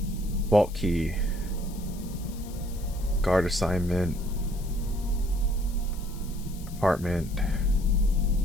Vault key, guard assignment, apartment,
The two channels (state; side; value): noise; left; hiss, 19 dB below the sound